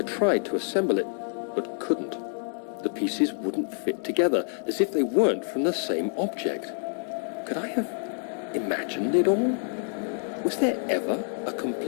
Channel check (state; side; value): silent; right; 60 dB below the other